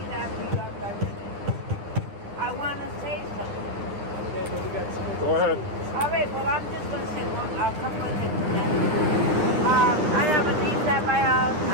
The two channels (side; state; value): left; late; 9.9 ms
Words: that for you after I finish. I want to say something. Go ahead. All right, well, I'm just going to say a couple of things. I have a niece at my house.